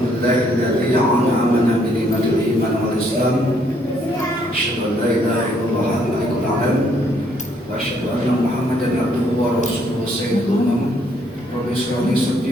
an'amana bi ni'matil iman wal islam. Asyhadu an la ilaha illallah al-malikul a'lam wa asyhadu anna Muhammadan abduhu wa rasuluhu sayyidul umam. Rabbi shrah li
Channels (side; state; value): both; normal; correlation 0.68